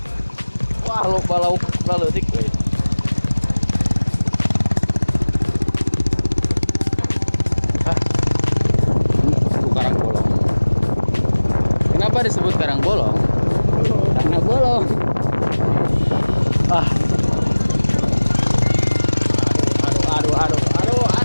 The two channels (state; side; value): inverted; both; correlation -1.00